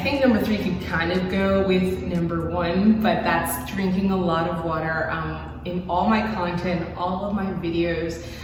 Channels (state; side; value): identical; both; correlation 1.00